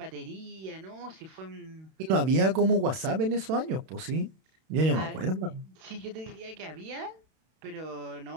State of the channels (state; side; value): late; left; 31 ms